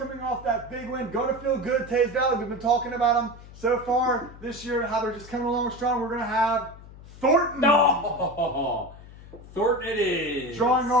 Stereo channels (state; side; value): noise; left; hum, 18 dB below the sound